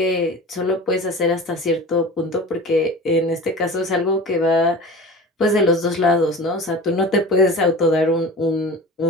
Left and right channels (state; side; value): normal; both; correlation 0.35